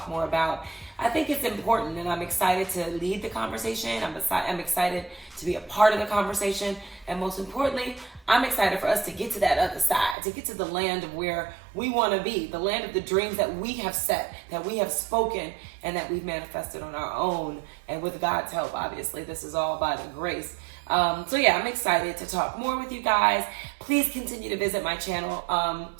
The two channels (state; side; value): drops out; left; at 10.2 s